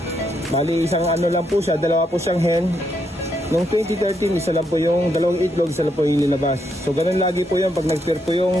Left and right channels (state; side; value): normal; both; correlation 0.78